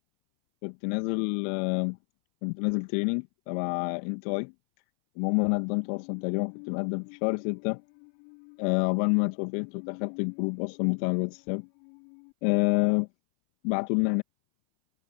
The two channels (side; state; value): right; silent; 59 dB below the other